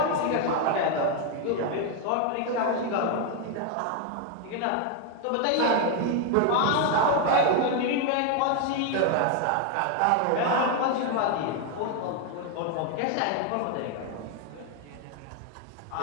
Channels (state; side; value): different; both; correlation 0.01